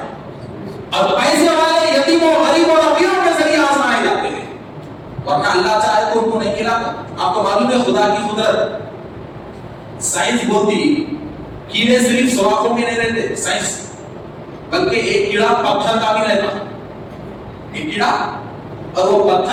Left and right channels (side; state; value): both; identical; correlation 1.00